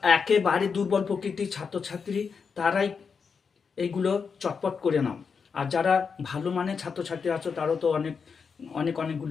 একেবারে দুর্বল প্রকৃতির ছাত্রছাত্রী, তারাই এইগুলো চটপট করে নাও। আর যারা ভালো মানের ছাত্রছাত্রী আছো, তারাও তো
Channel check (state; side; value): quieter; right; 5.8 dB